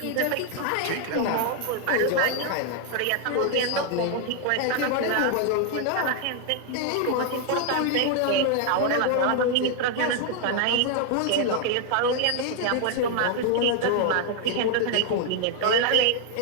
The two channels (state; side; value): different; both; correlation 0.00